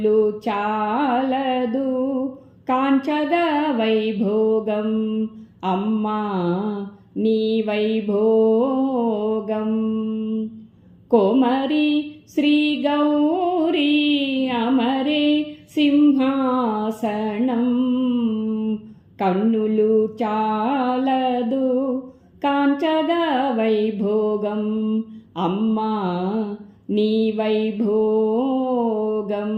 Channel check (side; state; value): both; identical; correlation 1.00